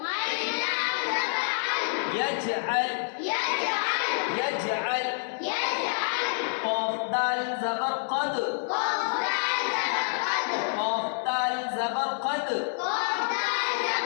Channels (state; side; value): silent; right; 59 dB below the other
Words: यजअल, यजअल। कौफ दाल ज़बर क़द, कौफ दाल ज़बर क़द।